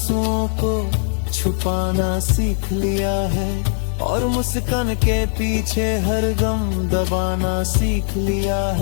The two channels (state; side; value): silent; right; 55 dB below the other